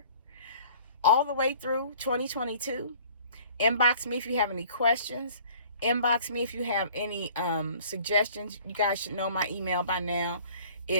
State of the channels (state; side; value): inverted; both; correlation -0.51